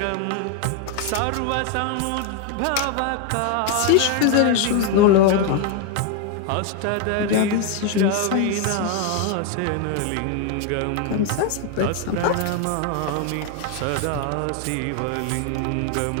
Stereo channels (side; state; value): both; different; correlation 0.01